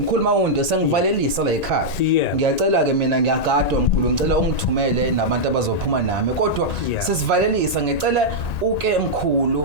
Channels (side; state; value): right; late; 1.9 ms